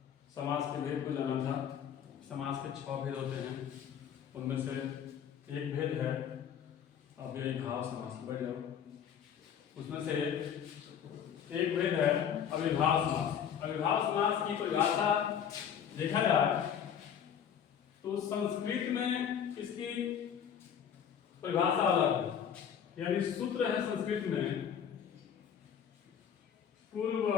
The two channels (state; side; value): quieter; right; 8.5 dB